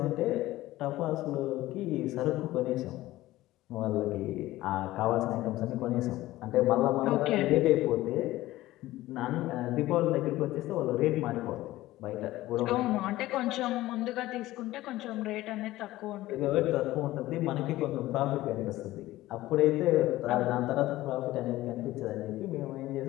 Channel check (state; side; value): quieter; right; 16.6 dB